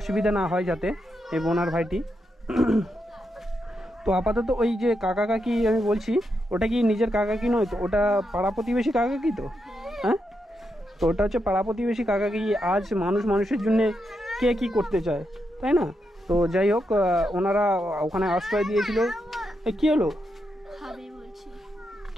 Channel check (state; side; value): normal; both; correlation 0.84